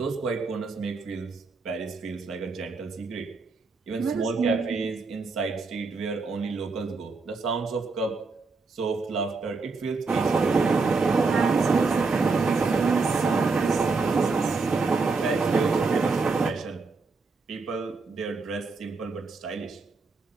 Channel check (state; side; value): quieter; left; 4.2 dB